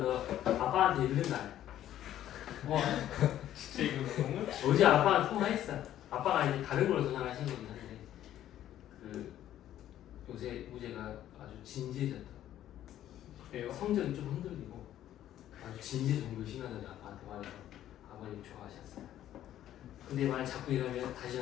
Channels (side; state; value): right; quieter; 12.1 dB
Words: 너 아빠한테 이른다. 와 진짜 이거 너무 어제 아빠랑 통화했어. 아빠가 이제 다른 걸로 전화하신 거긴 한데 그 요새 우재가 아주 진지해졌다. 그래요? 성적이 좀 흔들리고 아주 진지 정도 심하다고 아빠한테 말해서 아버님 좋아하셨어요. 근데 만약 자꾸 이러면 다시